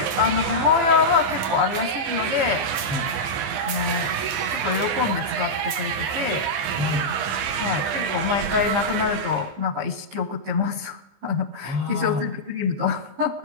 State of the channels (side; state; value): left; late; 15 ms